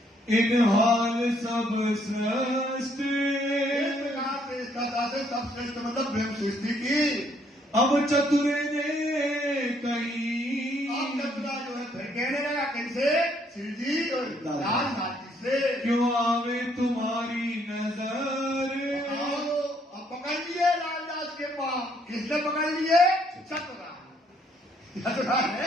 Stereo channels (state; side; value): normal; both; correlation 0.68